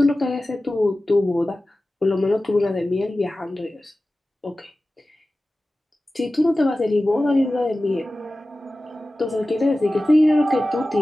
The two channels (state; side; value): normal; both; correlation 0.96